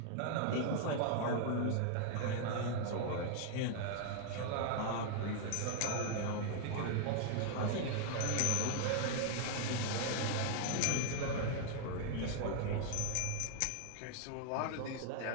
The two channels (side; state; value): both; different; correlation 0.00